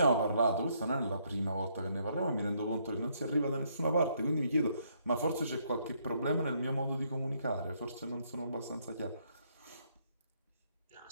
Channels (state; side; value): inverted; both; correlation -0.71